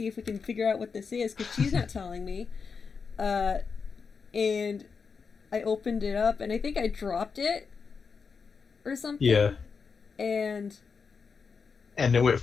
if we can figure out what this is," because she's not telling me. And I opened it up, and I think I dropped it, or something. Yeah. And And it went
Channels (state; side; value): quieter; right; 5.4 dB